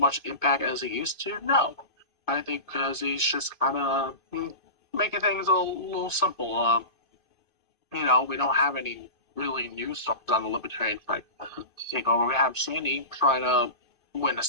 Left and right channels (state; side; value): late; right; 2.5 ms